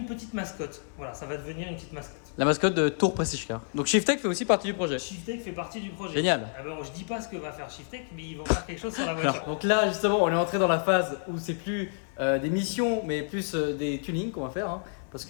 petite mascotte. Voilà, ça va devenir une petite mascotte. La mascotte de Tour Prestige Car. Donc Shiftek fait aussi partie du projet. Shiftek fait partie du projet. Génial. Ah ben, je dis pas ce que va faire Shiftek, mais ils vont faire quelque chose sur la voiture. Alors, donc là, justement, on est entré dans la phase où c'est plus des missions, mais plus des tunings qu'on va faire. Hein. Parce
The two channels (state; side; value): silent; right; 59 dB below the other